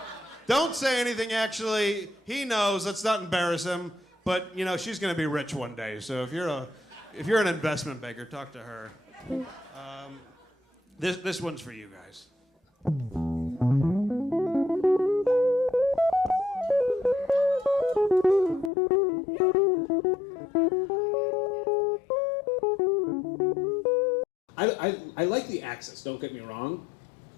Don't say anything, actually. He knows. Let's not embarrass him. But, she's going to be rich one day. So if you're an investment banker, talk to her. This one's for you guys. I like the access, don't get me wrong.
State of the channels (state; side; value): drops out; right; at 18.7 s